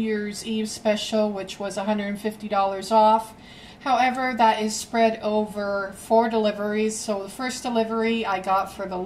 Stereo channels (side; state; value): both; identical; correlation 1.00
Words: Eve special, which was $150 off. However, that is spread over 4 deliveries. So the first delivery I got for the